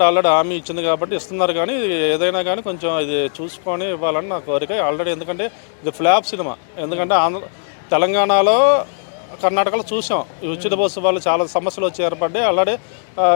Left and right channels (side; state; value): right; silent; digital silence